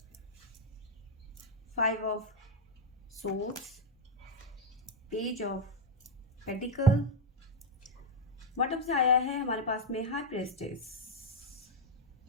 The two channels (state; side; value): normal; both; correlation 0.03